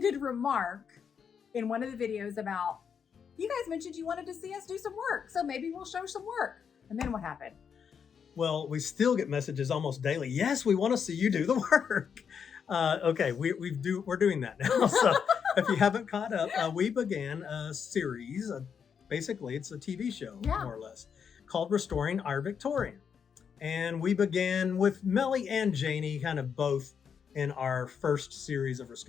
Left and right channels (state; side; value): quieter; right; 7.0 dB